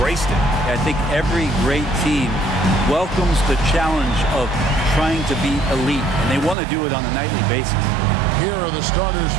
it. I think every great team welcomes the challenge of trying to be elite. And they want to do it on a nightly basis. Here are the starters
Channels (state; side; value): drops out; left; at 6.6 s